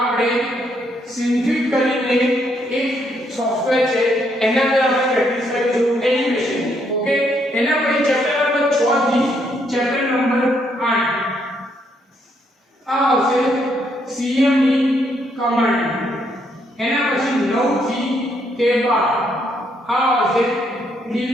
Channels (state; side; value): normal; both; correlation 0.73